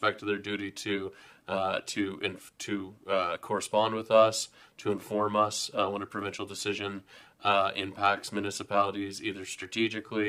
to their duty to correspond with us, to inform us when a provincial decision impacts municipalities either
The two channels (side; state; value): both; identical; correlation 1.00